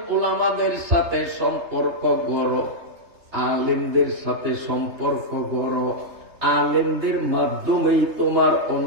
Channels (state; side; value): late; left; 3.3 ms